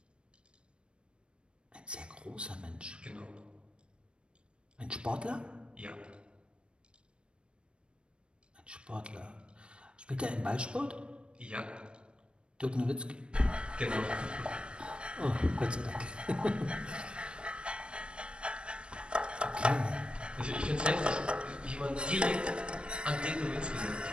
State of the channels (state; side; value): late; left; 0.056 ms